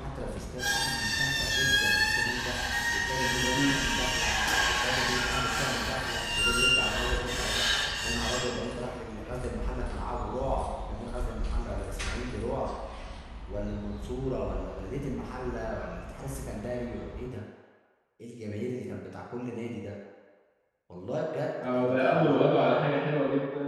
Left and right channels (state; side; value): identical; both; correlation 1.00